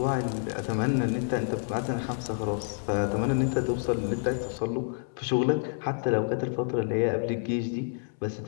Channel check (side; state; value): right; silent; 59 dB below the other